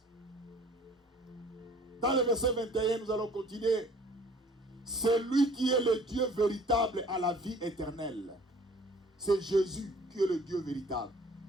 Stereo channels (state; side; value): normal; both; correlation 0.52